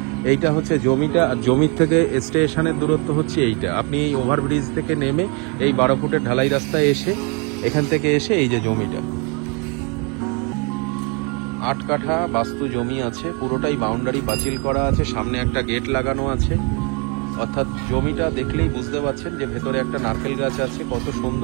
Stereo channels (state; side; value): quieter; left; 32.7 dB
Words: এইটা হচ্ছে জমিটা, আর জমির থেকে স্টেশনের দূরত্ব হচ্ছে এইটা। আপনি এই ওভারব্রিজ থেকে নেমে এই 12 ফুটের ঢালাই রাস্তায় এসে, এখান থেকে এসে এই যে জমিটা 8 কাঠা বাস্তু জমি আছে, পুরোটাই বাউন্ডারি পাঁচিল করা আছে, সামনে একটা গেট লাগানো আছে। অর্থাৎ জমিটা দেখলেই বুঝতে পারছেন যে ভেতরে একটা নারকেল গাছ আছে। কত